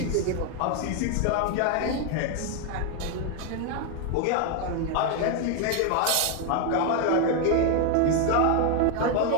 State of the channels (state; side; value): different; both; correlation 0.01